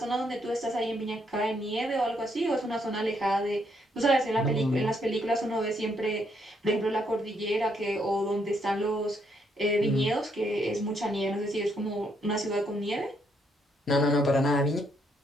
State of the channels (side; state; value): both; normal; correlation 0.74